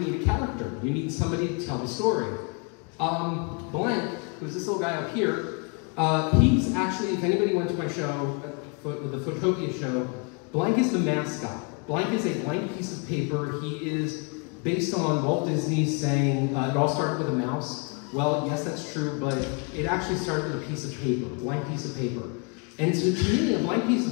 need a character. You need somebody to tell the story. Blank, who's this little guy up here, he's actually, if anybody went to my show, the Photopia show, Blank is the mascot. Blank is a blank piece of paper. He is based on Walt Disney saying, it all started with a mouse. Well, yes, that's true, but it actually started with a piece of paper, a blank piece of paper. And so to me, a blank piece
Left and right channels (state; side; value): quieter; right; 33.8 dB